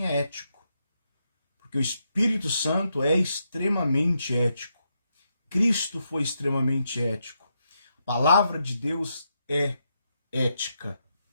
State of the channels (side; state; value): both; inverted; correlation -0.82